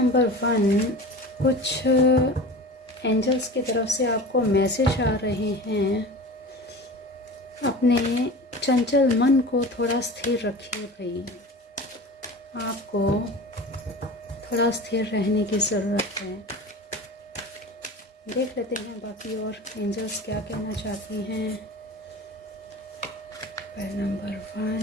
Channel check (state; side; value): normal; both; correlation 0.35